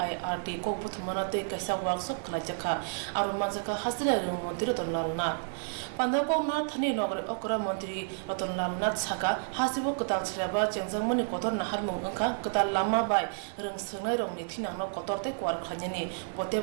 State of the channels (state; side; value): silent; left; digital silence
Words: kokbuthmanate kaisa workshop khlaijakha aru manjaka hasira rung mantri Ratanlal Nath pandako na thani nogre okra mantri Ratanlal Nath saka hasibo kotal shraba chengjangmani kotor naharmung angkha kotal lama bai rung sungnai rongni thinangno kotorte kwar khanyani